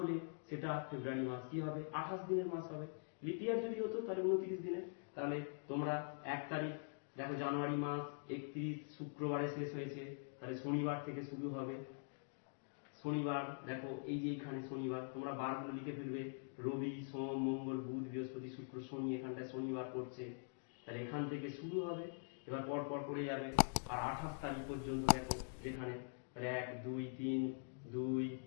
সেটা ফেব্রুয়ারি মাস কি হবে? 28 দিনের মাস হবে। লিপ ইয়ার যদি হতো তাহলে 29 দিনের। তাহলে তোমরা 1 তারিখ দেখো জানুয়ারি মাস 31 শুক্রবারে শেষ হয়েছে, তাহলে শনিবার থেকে শুরু হবে। শনিবার দেখো এই যে এখানে শনিবার, তোমরা বারগুলো লিখে ফেলবে, রবি সোম মঙ্গল বুধ বৃহস্পতি শুক্র শনি, এখানটায় শনিবার পড়ছে, তাহলে এখান থেকে শুরু হবে, এবার পর পর করে যাবে। আর 28 তারিখ পর্যন্ত দেখো যেখানে, তাহলে 1 2 3 2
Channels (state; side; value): silent; right; digital silence